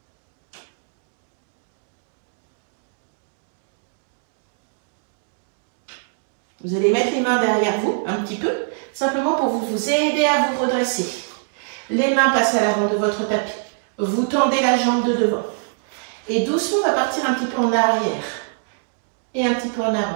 Vous allez mettre les mains derrière vous, un petit peu, simplement pour vous aider à vous redresser. Les mains passent à l'avant de votre tapis. Vous tendez la jambe de devant. Et doucement, on va partir un petit peu en arrière. Et un petit peu en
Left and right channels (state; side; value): silent; left; digital silence